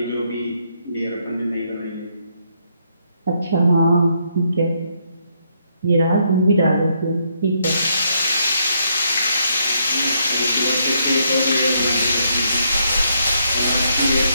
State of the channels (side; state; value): both; inverted; correlation -0.74